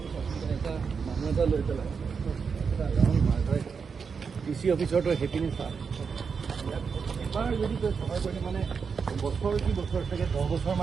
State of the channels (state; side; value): quieter; left; 5.8 dB